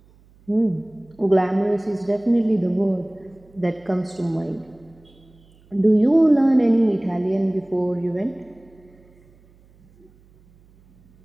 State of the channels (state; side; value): noise; right; hum, 29 dB below the sound